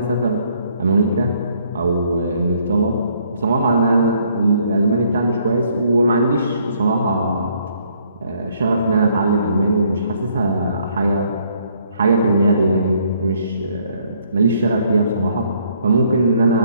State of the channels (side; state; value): both; inverted; correlation -0.66